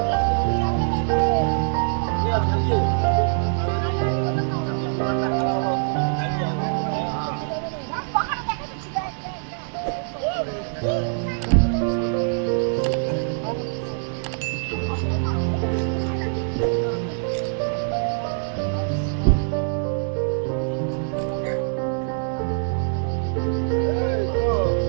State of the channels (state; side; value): silent; left; 63 dB below the other